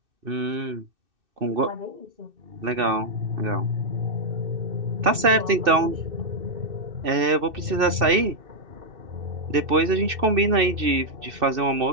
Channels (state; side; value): late; left; 2.6 ms